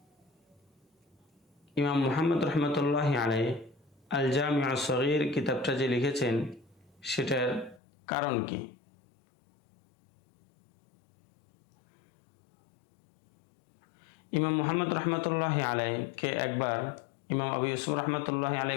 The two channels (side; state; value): right; drops out; at 7.8 s